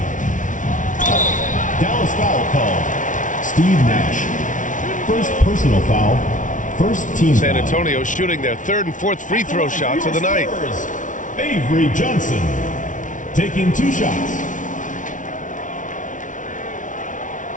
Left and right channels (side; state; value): right; late; 0.37 ms